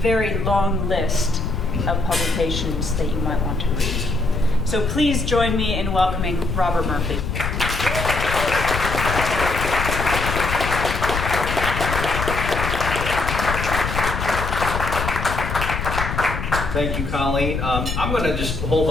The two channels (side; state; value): left; noise; rumble, 3 dB below the sound